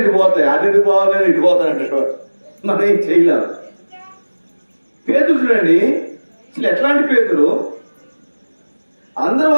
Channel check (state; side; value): inverted; both; correlation -1.00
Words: ఇటు పోతాయి, అటు ఇటు పోవాలని ఇటు పోతారంటారు. మనం ఏం చేయలేము. పేతురు చూడండి, అసలు ఎట్లాంటి పేతురు? అందరూ